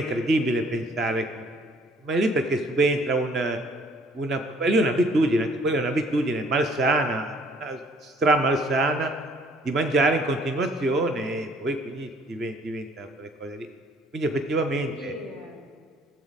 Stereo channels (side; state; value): both; normal; correlation 0.59